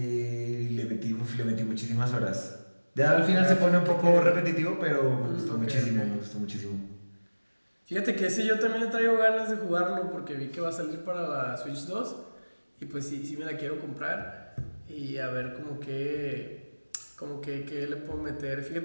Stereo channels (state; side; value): inverted; both; correlation -1.00